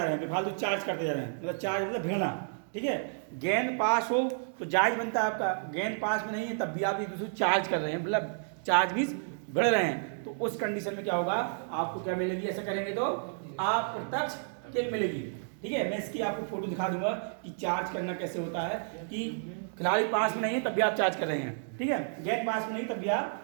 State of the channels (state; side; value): silent; left; digital silence